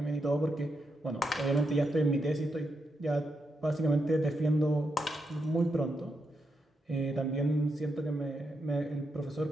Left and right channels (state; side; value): normal; both; correlation 0.83